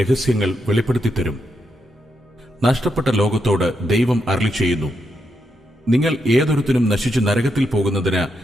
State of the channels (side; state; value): both; normal; correlation 0.82